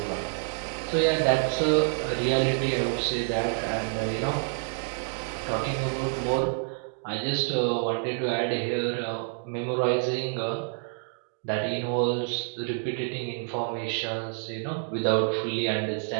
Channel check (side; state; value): left; silent; 59 dB below the other